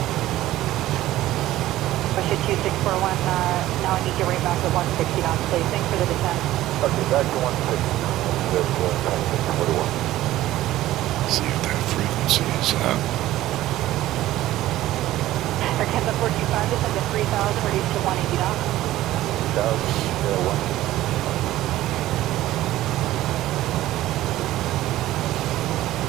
Russia 2641, now I need you right back at 160 knots, please. Thanks for the descent. Okay, back to 160. See if that frequency is up. Air Canada 425, descend to 3000, reduce to 180 knots. 1.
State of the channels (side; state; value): left; quieter; 15.0 dB